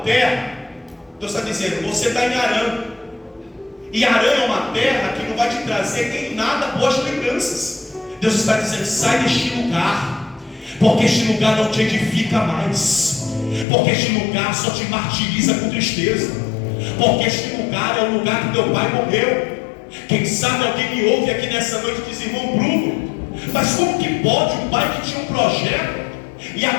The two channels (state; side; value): drops out; right; at 13.7 s